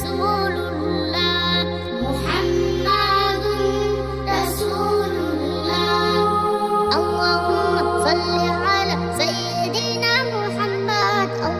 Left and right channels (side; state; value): both; identical; correlation 1.00